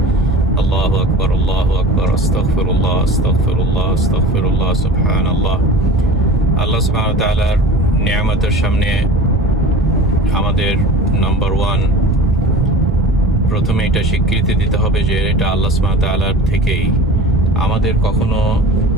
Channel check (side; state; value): both; normal; correlation 0.37